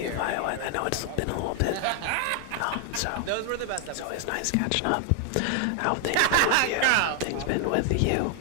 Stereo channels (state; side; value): different; both; correlation 0.00